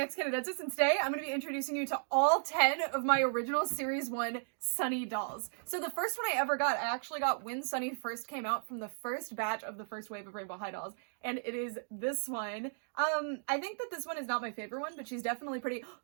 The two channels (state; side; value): silent; left; digital silence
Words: and today I'm going to be introducing you to all 10 of my original Series 1 Sunny dolls. So the first one I ever got, I actually got when Sunny first came out from the first batch of the first wave of Rainbow High dolls, and it is this one. I think that this one is not my favorite one, but she's definitely pretty...